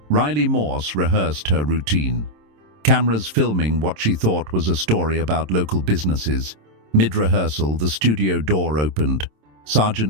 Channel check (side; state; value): left; late; 27 ms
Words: Riley Morse rehearsed her routine. Cameras filming what she thought was a story about local businesses. Mid-rehearsal, the studio door opened.